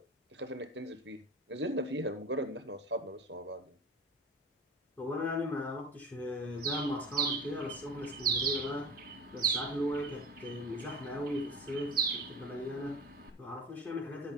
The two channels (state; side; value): normal; both; correlation 0.32